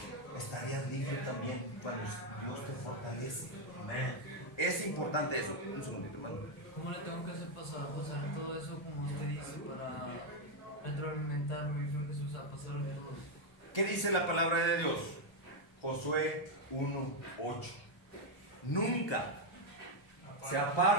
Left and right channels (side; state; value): right; late; 1.3 ms